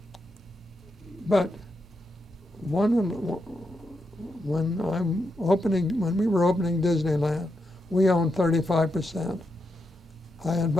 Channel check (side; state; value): both; normal; correlation 0.84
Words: But when we were opening Disneyland, we owned 35%. I